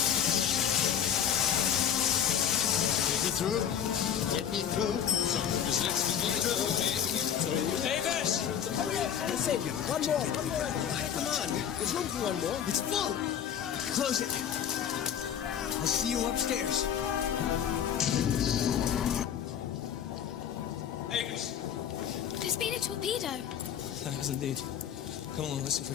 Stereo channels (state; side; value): quieter; right; 8.9 dB